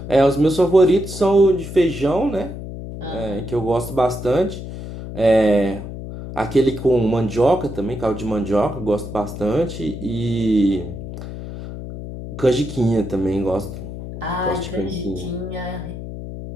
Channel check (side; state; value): left; noise; hum, 9 dB below the sound